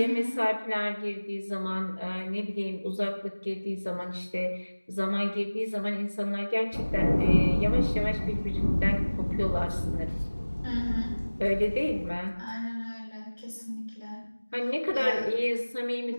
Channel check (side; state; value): both; inverted; correlation -1.00